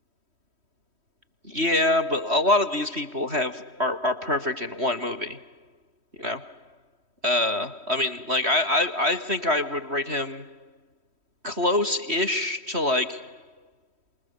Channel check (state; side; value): late; left; 3.1 ms